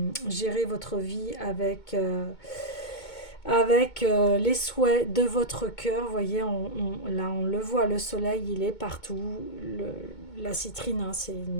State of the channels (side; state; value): right; late; 2.2 ms